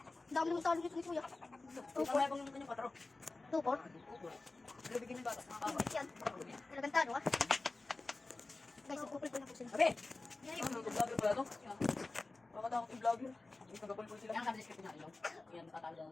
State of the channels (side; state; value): right; quieter; 3.3 dB